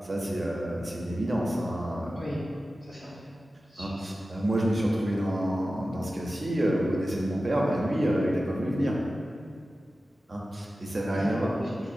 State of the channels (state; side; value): normal; both; correlation 0.94